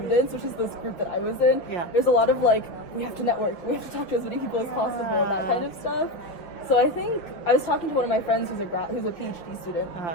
which is this group that I was in, there's a lot of like, we have to network, we have to talk to as many people as possible, that kind of stuff. So I think I was talking to one of my friends who's a PhD student,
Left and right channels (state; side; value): late; right; 5.7 ms